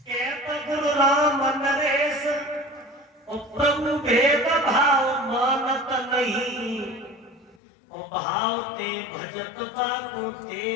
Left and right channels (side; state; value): right; drops out; at 7.6 s